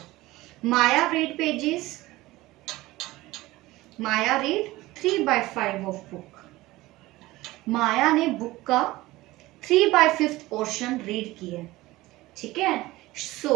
Maya read pages, Maya read 3 by 5 of book. Maya ने बुक का 3 by 5th पोर्शन रीड किया। ठीक है,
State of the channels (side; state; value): left; quieter; 18.6 dB